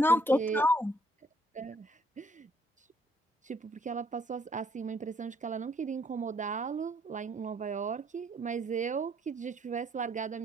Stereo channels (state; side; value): normal; both; correlation 0.66